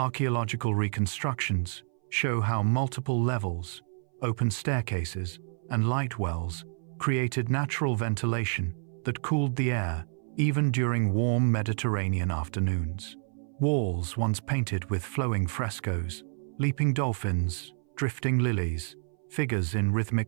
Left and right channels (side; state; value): left; silent; 59 dB below the other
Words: reconstructions show how multiple levels, open staircases, and light wells created natural ventilation that cooled the air even during warm Mediterranean afternoons. Walls once painted with flowing frescoes, leaping dolphins, drifting lilies, figures in